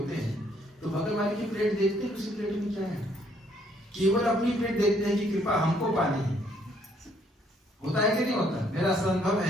हैं तो बगल वाले की प्लेट देखते हैं, उसी प्लेट में क्या है, केवल अपनी प्लेट देखते हैं कि कृपा हमको पानी है। होता है कि नहीं होता? मेरा अनुभव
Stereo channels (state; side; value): normal; both; correlation 0.67